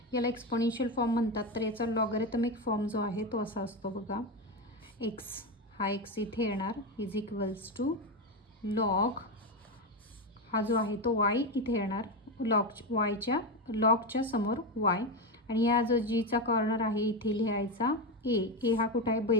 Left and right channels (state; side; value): normal; both; correlation 0.14